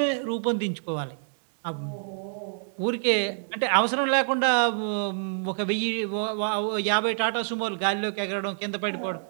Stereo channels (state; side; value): silent; left; digital silence